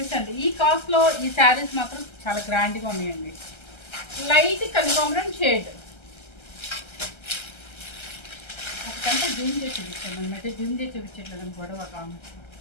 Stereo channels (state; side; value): late; right; 1.3 ms